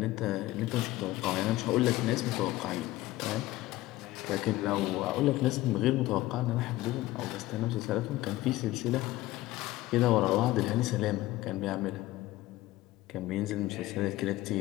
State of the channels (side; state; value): right; quieter; 17.0 dB